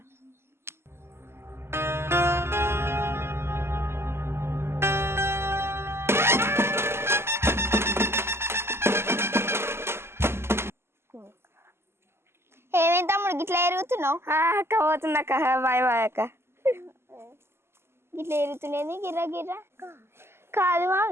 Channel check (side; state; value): left; late; 0.12 ms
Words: ఏమేం తమ్ముడు గిట్లా ఎరుగుతున్నావు? అక్క పోతున్నా అక్క, బాయ్ బాయ్ అక్క. గిట్లా ఎరుగుతున్నది గిర్ర గిర్ర కాదు